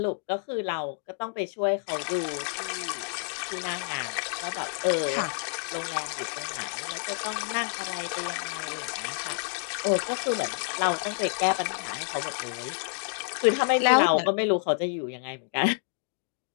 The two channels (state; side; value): silent; right; digital silence